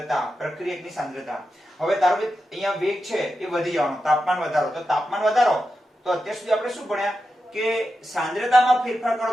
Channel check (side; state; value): both; normal; correlation 0.89